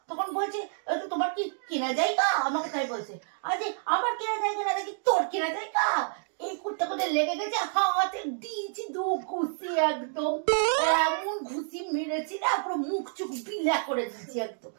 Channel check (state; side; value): silent; left; digital silence